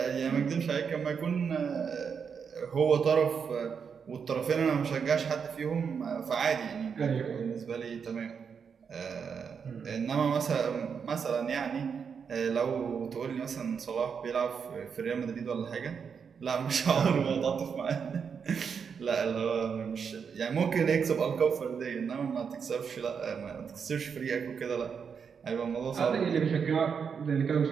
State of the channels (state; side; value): quieter; left; 6.5 dB